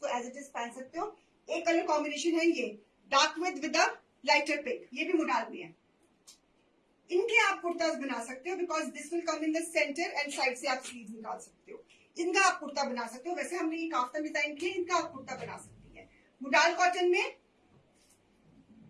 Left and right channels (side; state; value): both; identical; correlation 1.00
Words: एज इट इज पहन सकते हो। एक कलर कॉम्बिनेशन है ये dark with a lighter pink, ये भी मुडाल में है। इनके आप कुर्ताज बना सकते हो because this will come in the centre and side से आप स्लीव निकाल सकते हो। इनका आप कुर्ता बना सकते हो। वैसे हमने ये काफ्तान डिजाइन किया, इनका आप कुर्ता बना सकती है मुडाल कॉटन में।